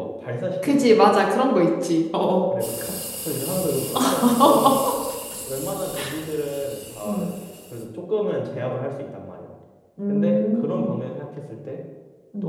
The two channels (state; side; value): identical; both; correlation 1.00